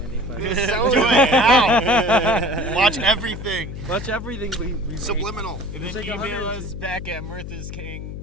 but Do it now. Watch everything. watch everything we Subliminal. And It's then like email 100 us back at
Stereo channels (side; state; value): left; noise; hum, 9 dB below the sound